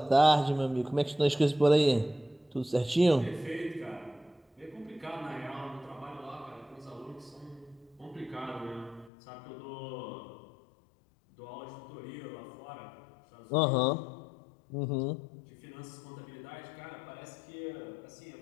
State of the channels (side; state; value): right; drops out; at 9.1 s